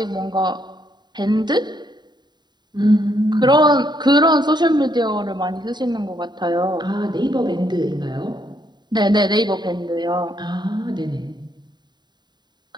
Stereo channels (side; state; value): left; late; 0.21 ms